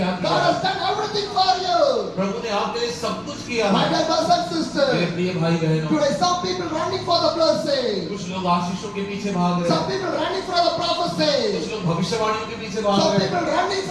God किया? has done everything for you. प्रभु ने आपके लिए सब कुछ किया My है। dear brothers and मेरे sisters, प्रिय भाई बहनों, today some people running for the blessing. कुछ लोग आशीषों के पीछे भाग रहे Some हैं, people running for the prophecy. कुछ लोग भविष्यवाणियों के पीछे भाग Some रहे हैं, people running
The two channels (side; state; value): right; noise; rumble, 28 dB below the sound